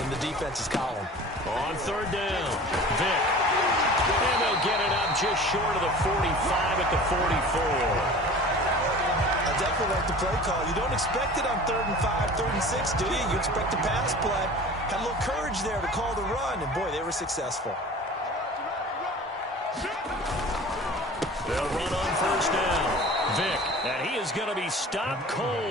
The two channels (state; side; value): normal; both; correlation 0.41